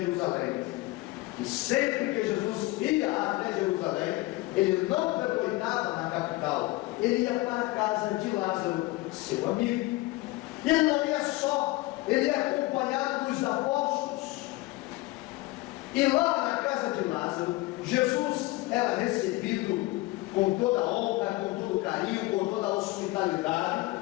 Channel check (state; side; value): quieter; right; 20.5 dB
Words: E sempre que Jesus ia até Jerusalém, ele não pernoitava na capital, ele ia para a casa de Lázaro, seu amigo. E ele não ia só, ele ia acompanhado dos apóstolos. E lá na casa de Lázaro, Jesus era recebido com toda a honra, com todo o carinho, com toda a hospitalidade.